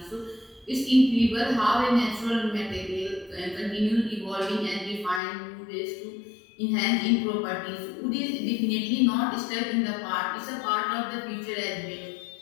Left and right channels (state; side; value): drops out; right; at 5.2 s